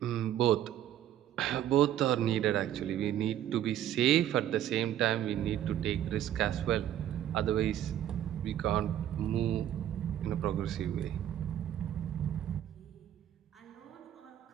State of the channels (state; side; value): quieter; left; 11.3 dB